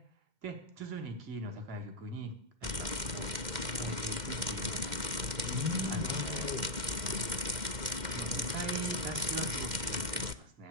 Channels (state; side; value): late; left; 2.1 ms